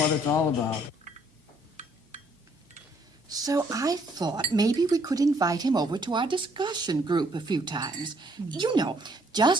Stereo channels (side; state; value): both; normal; correlation 0.66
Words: it's all about. So I thought maybe we could invite him over to our discussion group a few times. You know,